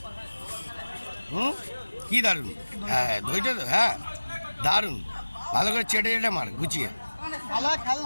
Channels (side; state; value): both; inverted; correlation -1.00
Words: কি দারুণ, হ্যাঁ দইটা তো, হ্যাঁ দারুণ, ভালো করে চেটে চেটে মার গুছিয়ে।